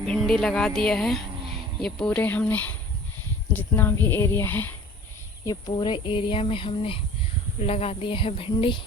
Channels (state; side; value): normal; both; correlation 0.45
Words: लगा दिया है। ये पूरे हमने जितना भी एरिया है, ये पूरे एरिया में हमने लगा दिया है भिंडी।